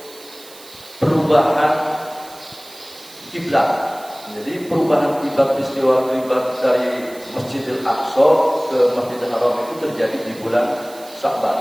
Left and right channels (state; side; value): noise; right; hiss, 20 dB below the sound